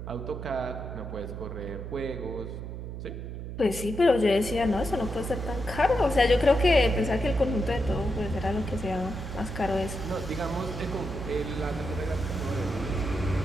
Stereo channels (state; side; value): noise; right; hum, 8 dB below the sound